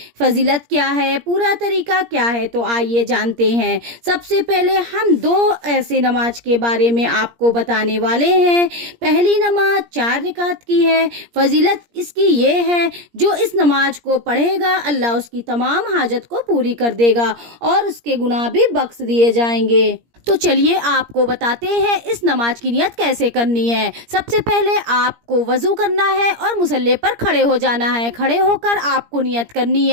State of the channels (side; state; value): left; late; 17 ms